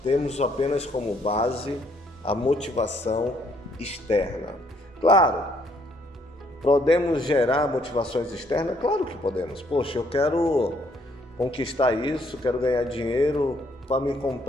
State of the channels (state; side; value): normal; both; correlation 0.68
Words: temos apenas como base a motivação externa. Claro, podemos gerar motivações externas? Claro que podemos. Poxa, eu quero conquistar isso, quero ganhar dinheiro para me